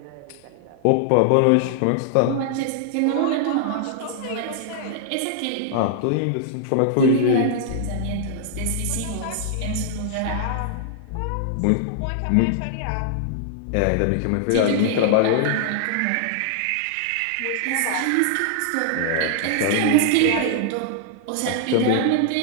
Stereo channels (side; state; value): both; different; correlation -0.01